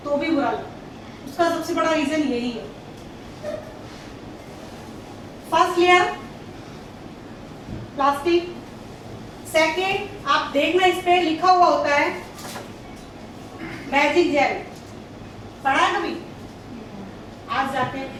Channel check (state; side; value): identical; both; correlation 1.00